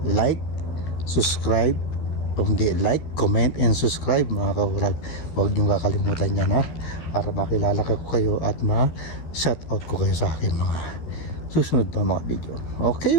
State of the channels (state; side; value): late; right; 13 ms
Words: like, subscribe. Kung di, like, comment, and subscribe mga kaurag. Huwag niyong kakalimutan yan, para makilala ko kayo at ma-shoutout ko kayo sa aking mga susunod pa mga video. Okay